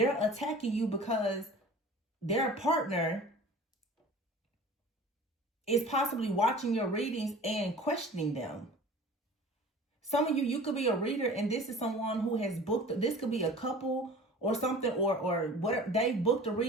attacking you because their partner is possibly watching your readings and questioning them. Some of you could be a reader, and this is someone who has booked, this could be a couple or something, or whatever, they booked a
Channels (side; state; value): both; normal; correlation 0.42